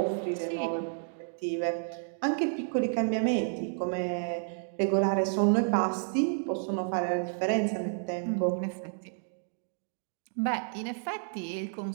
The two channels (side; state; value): left; silent; digital silence